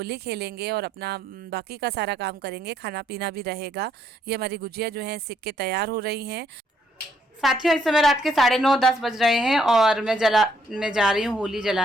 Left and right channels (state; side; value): normal; both; correlation 0.71